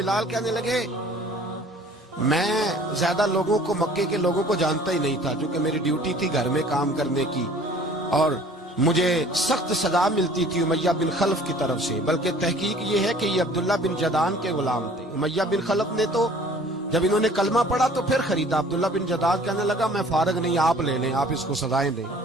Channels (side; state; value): both; normal; correlation 0.51